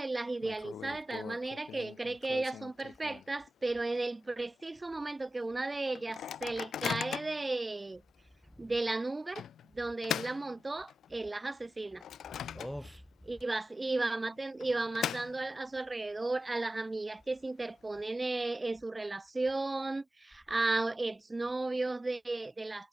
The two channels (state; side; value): normal; both; correlation 0.95